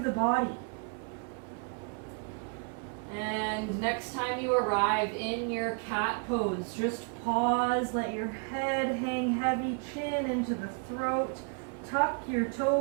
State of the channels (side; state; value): left; quieter; 38.4 dB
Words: body. And next time you arrive in your cat pose, just pause, let your head hang heavy, chin into the throat, tuck your